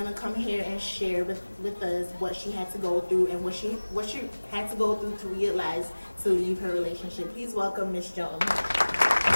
come here and share with us what she had to go through and what she had to go through to realize to leave her relationship. Please welcome Miss Jones.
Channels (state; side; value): inverted; both; correlation -1.00